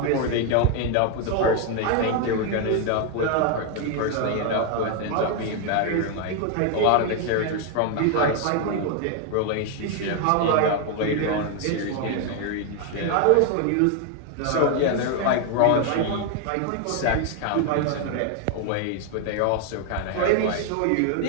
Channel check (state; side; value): different; both; correlation 0.01